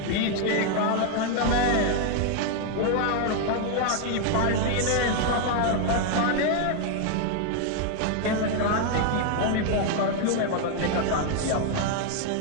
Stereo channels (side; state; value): both; different; correlation 0.00